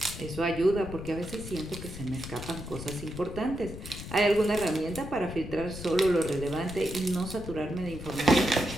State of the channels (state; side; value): noise; left; rumble, 10 dB below the sound